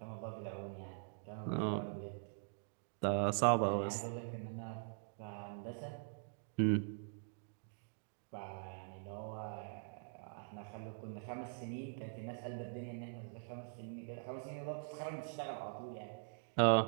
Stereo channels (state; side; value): silent; left; digital silence